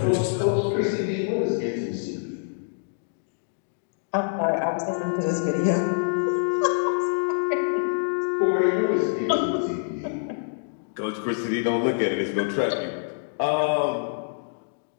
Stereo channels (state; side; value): silent; right; digital silence